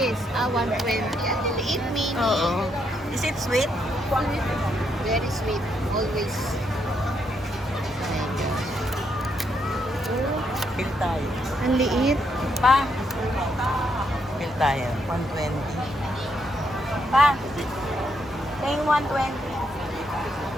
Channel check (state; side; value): normal; both; correlation 0.77